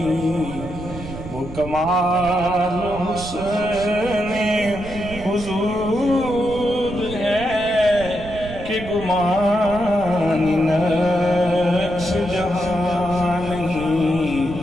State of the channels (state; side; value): noise; right; rumble, 12 dB below the sound